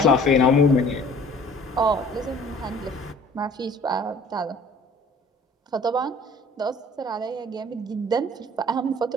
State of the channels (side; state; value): both; normal; correlation 0.51